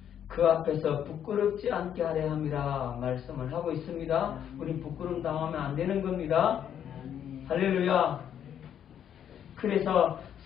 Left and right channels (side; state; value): right; quieter; 9.4 dB